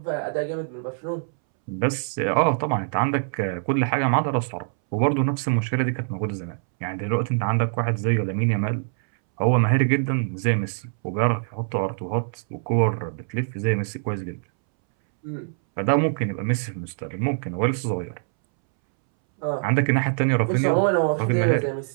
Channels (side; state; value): left; silent; 63 dB below the other